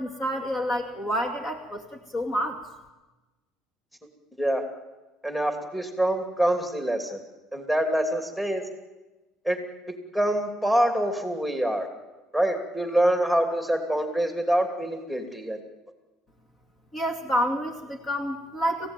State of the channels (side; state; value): both; normal; correlation 0.86